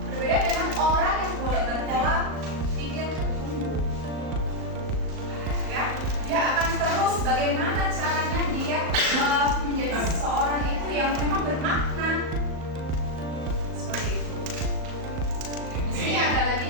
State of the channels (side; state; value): left; late; 38 ms